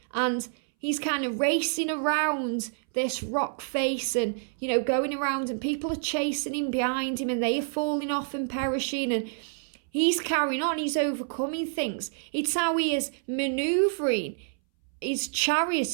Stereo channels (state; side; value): silent; left; 59 dB below the other